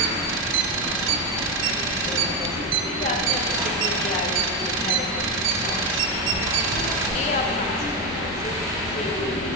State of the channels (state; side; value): normal; both; correlation 0.09